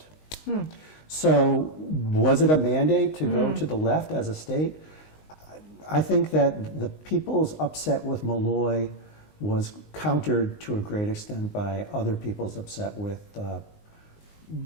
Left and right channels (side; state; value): right; late; 19 ms